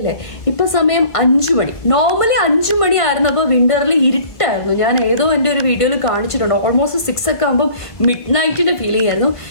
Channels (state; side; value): late; right; 1.5 ms